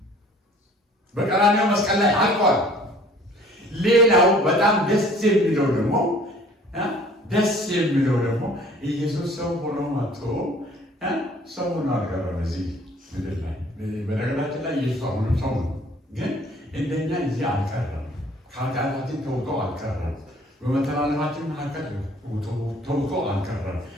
በቀራንዮ መስቀል ላይ አልቋል። ሌላው በጣም ደስ የሚለው ደግሞ ኢየሱስ ሰው ሆኖ መጥቶ ሰው ሆኖ አልቀረም እዚህ ምድር ላይ። በነገራችን ላይ ኢየሱስ አሁንም ሰው ነው፣ ግን እንደኛ እዚህ አልቀረም። ከኃጢአታችን ተውጦ አልቀረም። በመተላለፋችን መካከል ተውጦ አልቀረም።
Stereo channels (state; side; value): normal; both; correlation 0.53